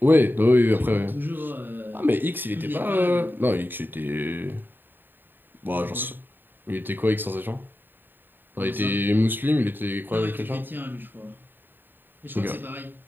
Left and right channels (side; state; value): left; late; 0.093 ms